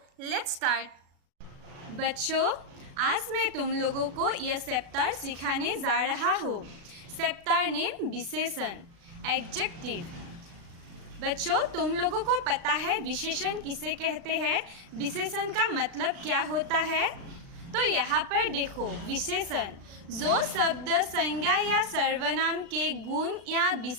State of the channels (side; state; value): left; late; 36 ms